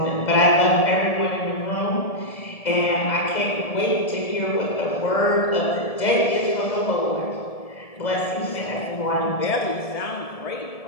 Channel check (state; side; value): late; right; 1.7 ms